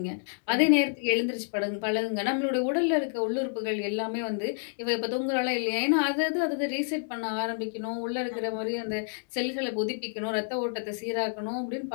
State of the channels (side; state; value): right; silent; digital silence